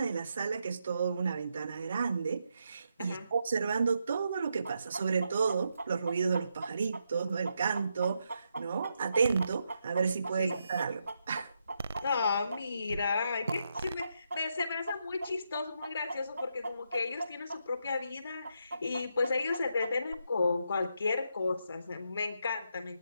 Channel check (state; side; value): inverted; both; correlation -0.81